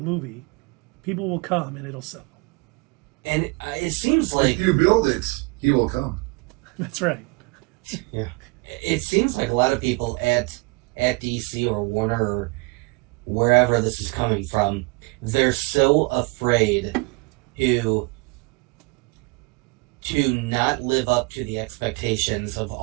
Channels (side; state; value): left; quieter; 27.7 dB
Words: movie, people will come and it'll sell. And it seems like If you build it, he will come. That's right. yeah, it seems like a lot of people at DC or Warner or wherever this is coming from, they're so afraid to not live up to the expectations of